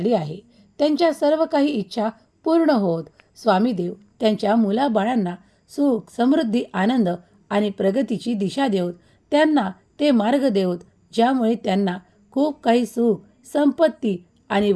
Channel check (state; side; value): identical; both; correlation 1.00